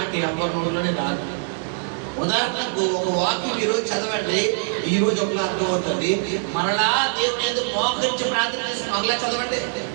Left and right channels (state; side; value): silent; left; 58 dB below the other